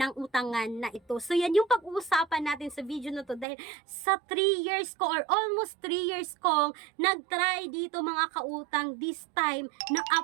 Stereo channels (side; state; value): left; drops out; at 3.5 s